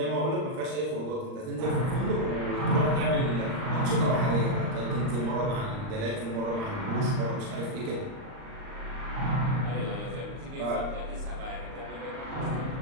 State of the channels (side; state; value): left; late; 39 ms